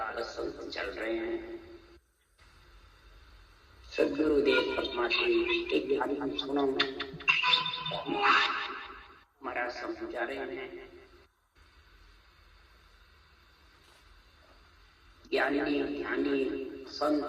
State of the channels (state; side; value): identical; both; correlation 1.00